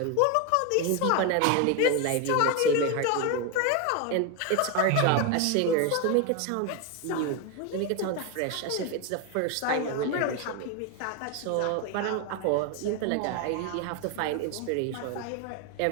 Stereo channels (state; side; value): different; both; correlation 0.02